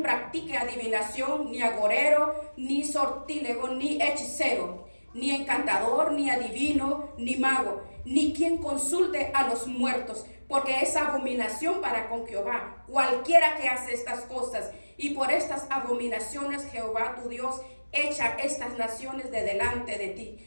practique adivinación, ni agorero, ni sortílego, ni hechicero, ni encantador, ni adivino, ni mago, ni quien consulte a los muertos, porque es abominación para con Jehová cualquiera que hace estas cosas. Y por estas abominaciones Jehová tu Dios echa estas naciones de delante de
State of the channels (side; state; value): both; inverted; correlation -1.00